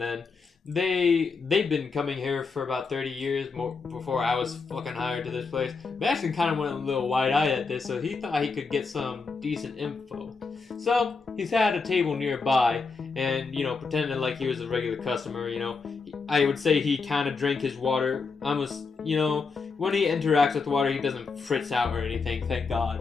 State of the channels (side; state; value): right; quieter; 4.6 dB